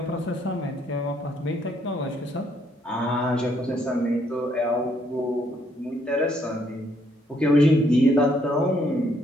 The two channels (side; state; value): both; normal; correlation 0.70